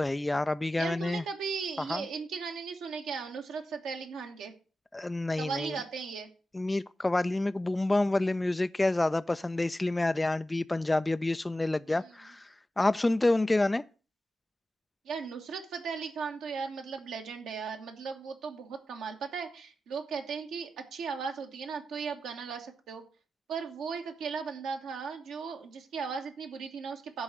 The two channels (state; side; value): normal; both; correlation 0.92